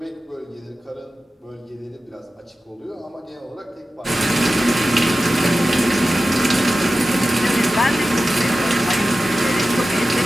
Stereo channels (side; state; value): both; normal; correlation 0.94